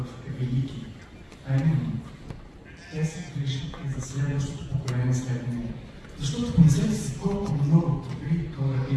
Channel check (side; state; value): both; identical; correlation 1.00